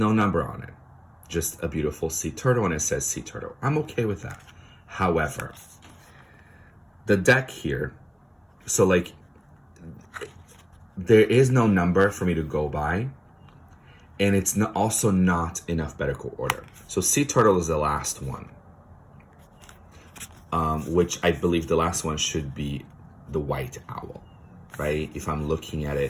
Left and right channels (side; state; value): both; identical; correlation 1.00